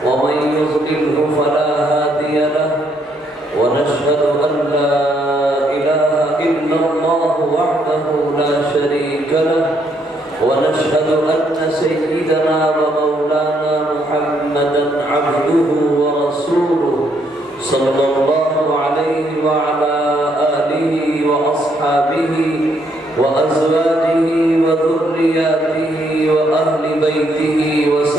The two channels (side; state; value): both; normal; correlation 0.72